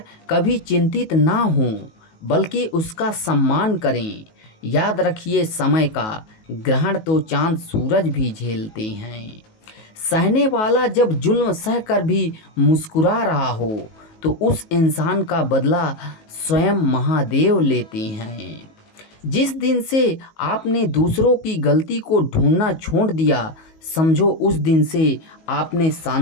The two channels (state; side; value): late; right; 19 ms